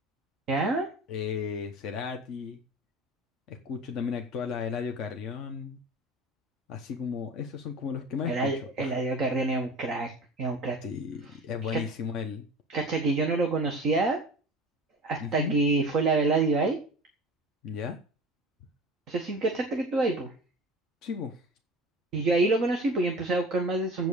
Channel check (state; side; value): normal; both; correlation 0.37